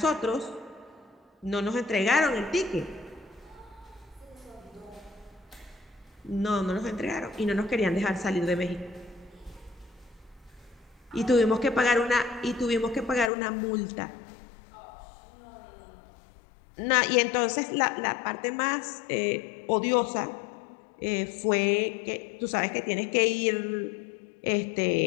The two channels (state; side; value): drops out; right; at 13.3 s